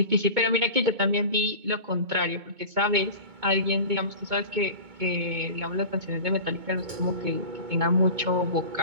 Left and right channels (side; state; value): left; late; 2.2 ms